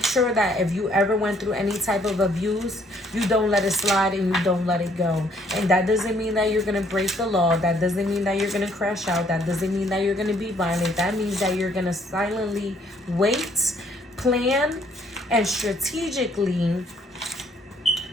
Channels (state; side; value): normal; both; correlation 0.65